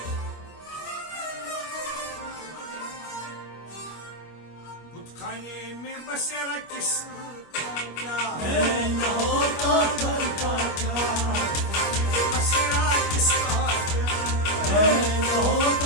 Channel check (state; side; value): late; right; 25 ms